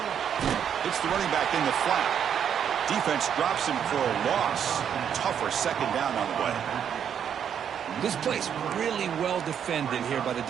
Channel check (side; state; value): left; quieter; 8.5 dB